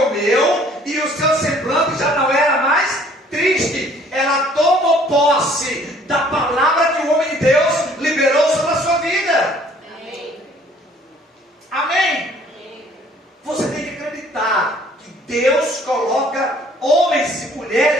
e o seu semblante já não era mais triste. Ela tomou posse da palavra que o homem de Deus liberou sobre a sua vida. Amém. Amém? Você tem que acreditar que Deus coloca homens e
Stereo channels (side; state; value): both; normal; correlation 0.57